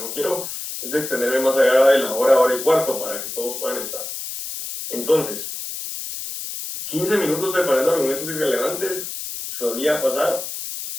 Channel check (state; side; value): noise; left; hiss, 7 dB below the sound